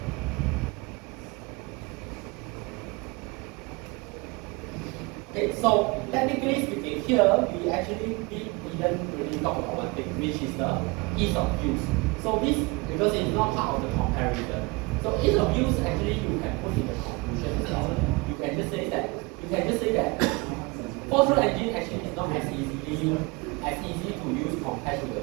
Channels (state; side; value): quieter; left; 26.3 dB